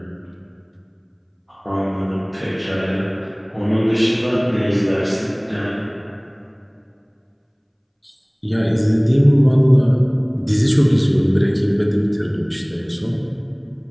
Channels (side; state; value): both; identical; correlation 1.00